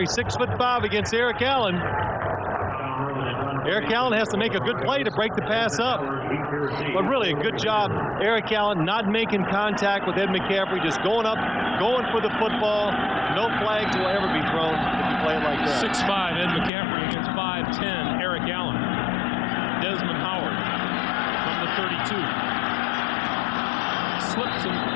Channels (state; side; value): drops out; right; at 16.7 s